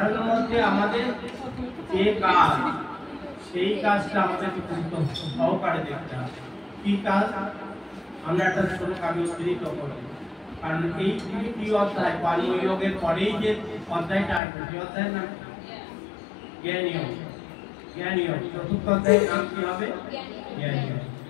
মধ্যে আমাদের যে কাজ, সেই কাজটা আমাদের গুরুত্ব সহকারে দেখতে হবে। কি কাজ? আমরা একটা শ্লোক আমি উদ্ধৃত করব, কারণ এই 3টি অধ্যায় কর্মযোগের পরেই যে অধ্যায়টা আসবে, সেই অধ্যায়ের নাম জ্ঞানযোগ। জ্ঞানযোগ 4র্থ অধ্যায়ের নাম কি হবে? জ্ঞানযোগ।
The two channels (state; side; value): drops out; right; at 14.4 s